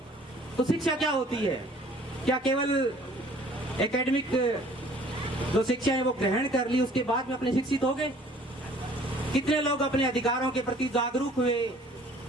तो शिक्षा क्या होती है? क्या केवल एकेडमिक जो शिक्षा है वो ग्रहण कर ली, उसके बाद में अपने शिक्षित हो गए? कितने लोग अपने अधिकारों के प्रति जागरूक हुए,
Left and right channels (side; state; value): both; normal; correlation 0.53